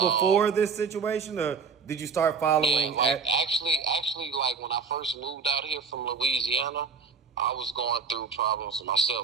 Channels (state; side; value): quieter; left; 5.3 dB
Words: this situation, or did you start following? Yeah, actually, like when I first moved out here from Louisiana, I was going through problems